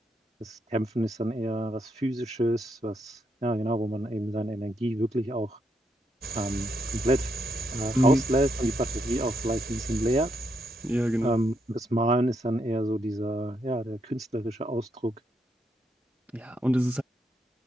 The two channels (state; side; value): normal; both; correlation 0.78